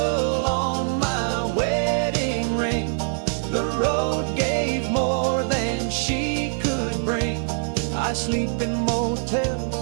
on my wedding ring, the road gave more than she could bring. I sleep in motels,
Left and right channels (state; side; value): silent; left; 63 dB below the other